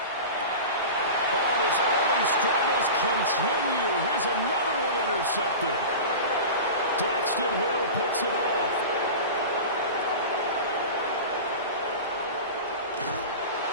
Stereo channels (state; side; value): inverted; both; correlation -0.31